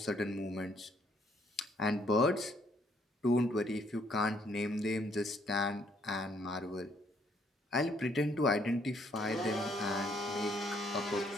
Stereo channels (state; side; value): normal; both; correlation 0.67